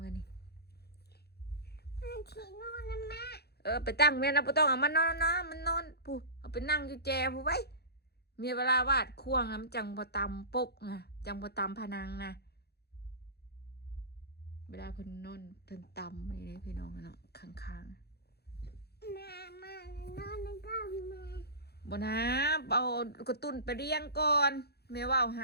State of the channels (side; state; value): right; late; 0.47 ms